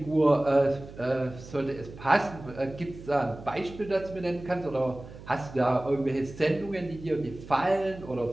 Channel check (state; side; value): noise; right; hum, 16 dB below the sound